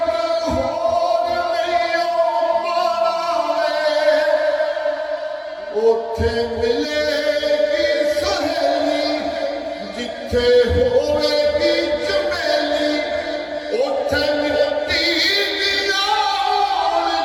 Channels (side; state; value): both; identical; correlation 1.00